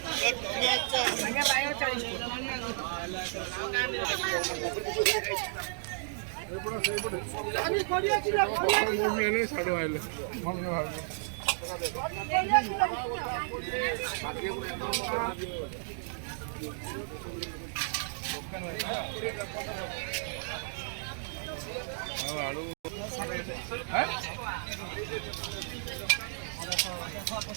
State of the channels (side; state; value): left; silent; digital silence